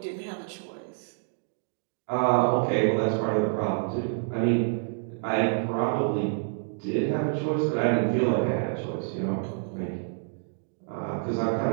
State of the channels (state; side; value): silent; left; digital silence